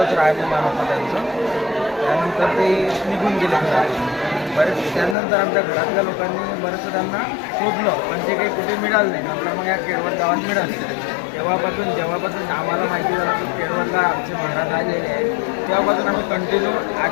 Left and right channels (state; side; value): drops out; right; at 5.2 s